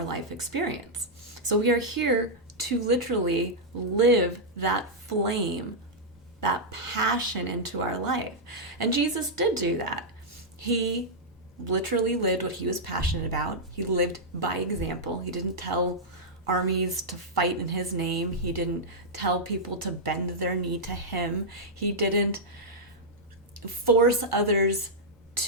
life experience. So we are here to literally live that flame, that passion into our life. And Jesus did do that. He literally lived what he was passionate about. He lived by example. He didn't tell armies to fight in his name. He didn't tell people to bend their knee to him. He didn't force others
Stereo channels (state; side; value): normal; both; correlation -0.07